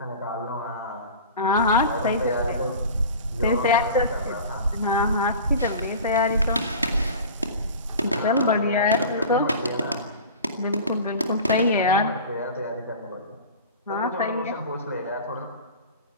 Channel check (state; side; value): inverted; both; correlation -0.37